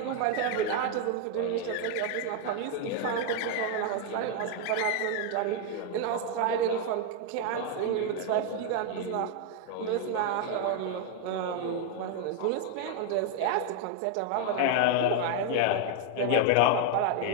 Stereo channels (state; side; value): different; both; correlation 0.00